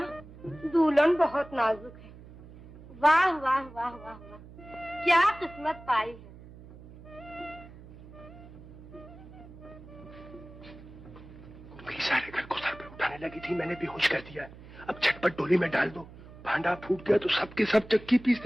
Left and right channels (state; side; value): noise; right; hum, 18 dB below the sound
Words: दुल्हन बहुत नाजुक है। वाह वाह वाह वाह वाह, क्या किस्मत पाई है। सारे घर को सर पे उठाने लगी थी, मैंने बेहोश कर दिया। अब झटपट डोली में डाल दो, भांडा फूट गया तो सबके सब चक्की